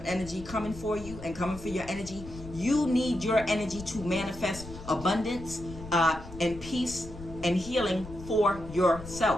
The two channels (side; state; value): left; noise; rumble, 13 dB below the sound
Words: energy coming for you and coming for your energy. You need your energy to manifest abundance and peace and healing for